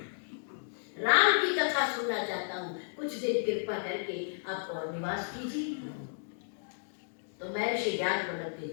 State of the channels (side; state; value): right; silent; digital silence